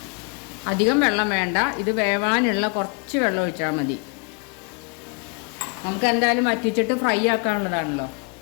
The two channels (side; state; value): right; quieter; 35.6 dB